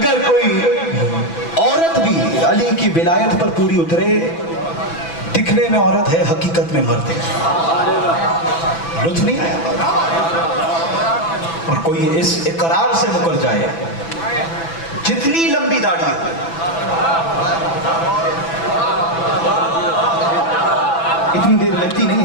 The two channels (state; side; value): late; right; 6.0 ms